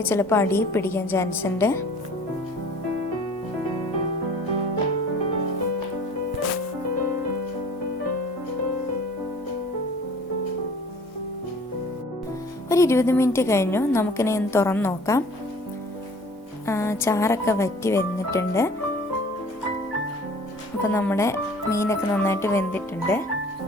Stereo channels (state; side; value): normal; both; correlation 0.49